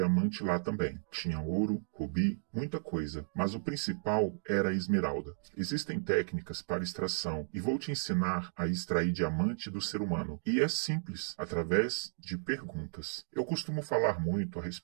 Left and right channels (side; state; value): left; silent; digital silence